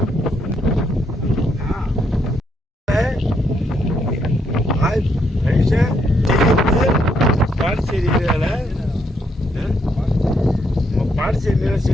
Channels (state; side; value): normal; both; correlation 0.75